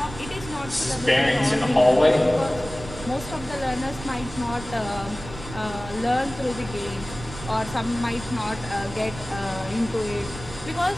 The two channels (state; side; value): noise; right; rumble, 13 dB below the sound